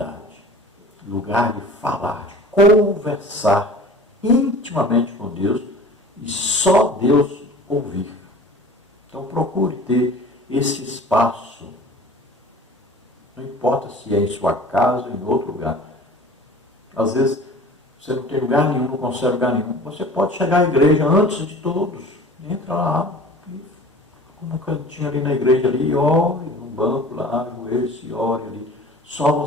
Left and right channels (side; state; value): both; normal; correlation 0.43